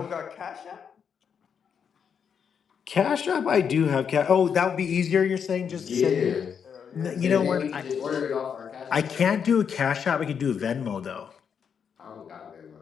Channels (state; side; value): quieter; right; 7.2 dB